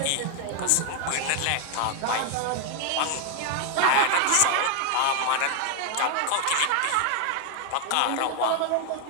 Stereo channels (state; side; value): different; both; correlation 0.01